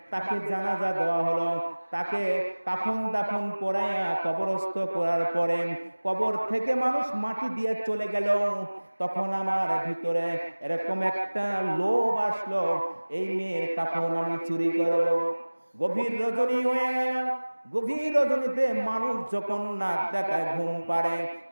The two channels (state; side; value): inverted; both; correlation -1.00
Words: তাকে জানাজা দেওয়া হলো, তাকে কাফন দাফন পরাইয়া কবরস্থ করার পরে কবর থেকে মানুষ মাটি দিয়ে চলে গেল। তখন আমার ভিতরে এরকম একটা লোভ আসলো, এই মেয়ের কাফন আমি চুরি করব। গভীর রজনী হয়ে গেল, গভীর রজনীতে মানুষ যখন নাক ডাকায় ঘুম পাড়ে,